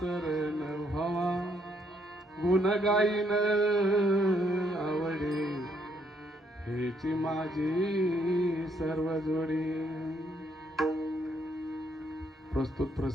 न व्हावा गुण गाईन आवडे हेची माझी सर्व जोडी प्रस्तुत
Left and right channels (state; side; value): normal; both; correlation 0.72